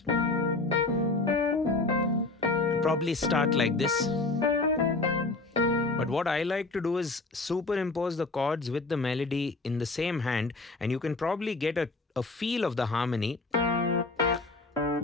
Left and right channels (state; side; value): quieter; right; 3.3 dB